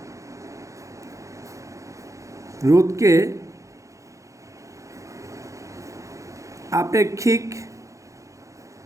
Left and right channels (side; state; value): left; late; 0.15 ms